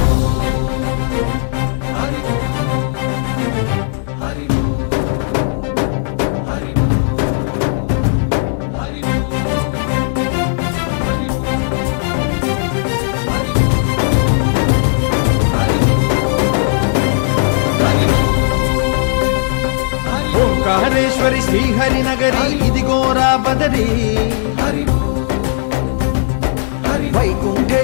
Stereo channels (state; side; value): silent; right; digital silence